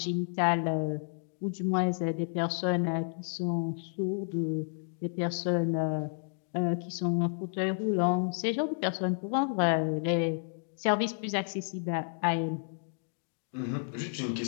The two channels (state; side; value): silent; right; digital silence